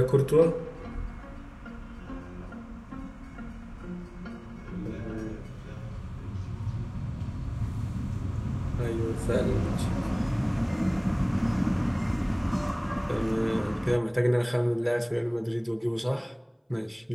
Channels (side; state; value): both; identical; correlation 1.00